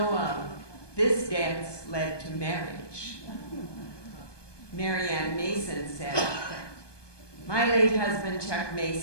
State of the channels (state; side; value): late; right; 1.2 ms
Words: of, this dance led to marriage. Marianne Mason said, "My late husband, Chuck